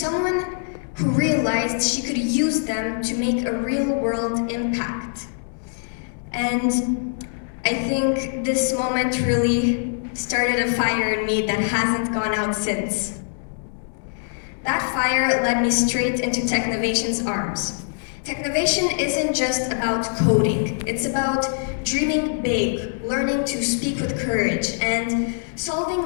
who realized she could use them to make a real-world impact. And I think this moment really started a fire in me that hasn't gone out since. That fire led me straight into Technovation's arms. Technovation isn't just about coding, it's about dreaming big, learning to speak with courage, and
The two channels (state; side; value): silent; right; digital silence